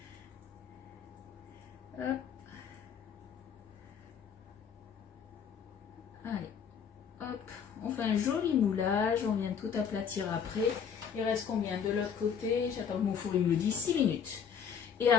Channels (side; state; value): right; quieter; 7.2 dB